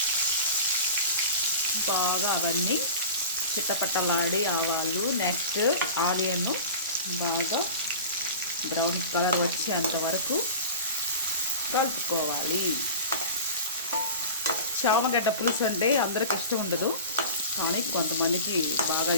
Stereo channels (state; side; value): inverted; both; correlation -0.36